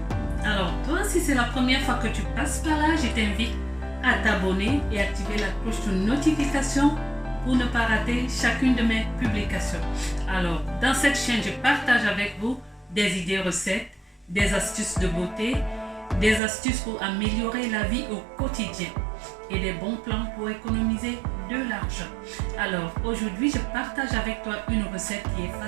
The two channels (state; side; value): drops out; left; at 16.4 s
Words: Alors toi, si c'est la première fois que tu passes par là, je t'invite à t'abonner et activer la cloche de notification pour ne pas rater chacune de mes publications. Alors dans cette chaîne, je partage avec vous des idées recettes, des astuces de beauté, des astuces pour améliorer la vie au quotidien et des bons plans pour économiser de l'argent. Alors aujourd'hui, je partage avec toi une recette qui est